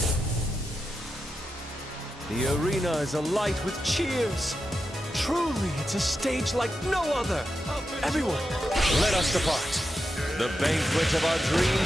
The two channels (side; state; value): both; normal; correlation 0.88